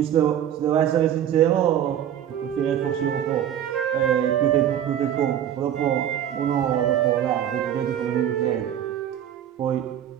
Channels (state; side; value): quieter; left; 10.3 dB